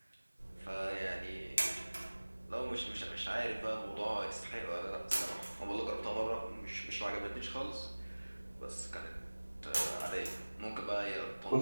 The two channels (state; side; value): inverted; both; correlation -1.00